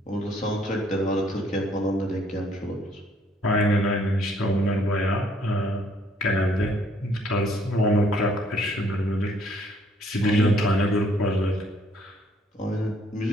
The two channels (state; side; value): normal; both; correlation 0.64